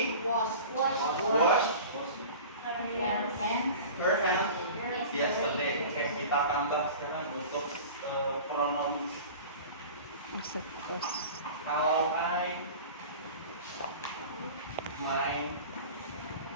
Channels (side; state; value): both; inverted; correlation -0.38